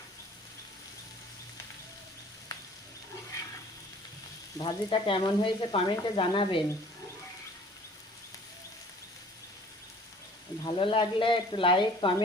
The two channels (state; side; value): normal; both; correlation 0.52